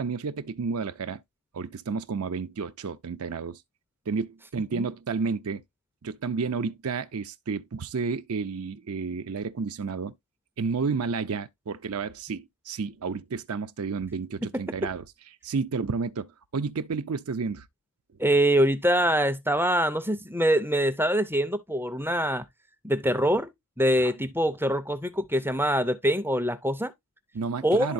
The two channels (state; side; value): normal; both; correlation 0.59